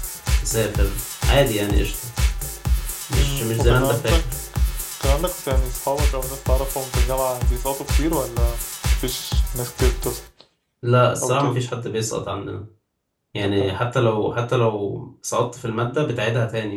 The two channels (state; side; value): identical; both; correlation 1.00